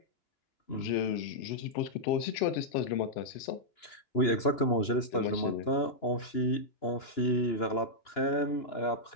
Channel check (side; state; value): right; late; 2.9 ms